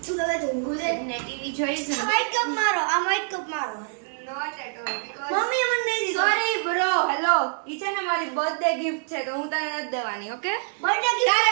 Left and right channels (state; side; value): silent; left; digital silence